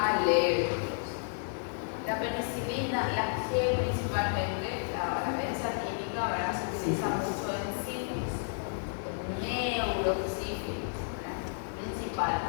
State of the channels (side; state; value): right; silent; digital silence